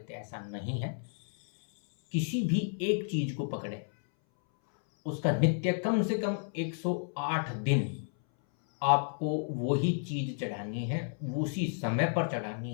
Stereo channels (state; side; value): silent; right; 57 dB below the other